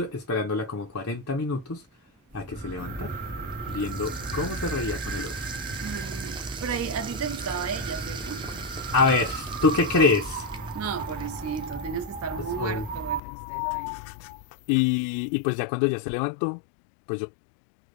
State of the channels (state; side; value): drops out; right; at 13.2 s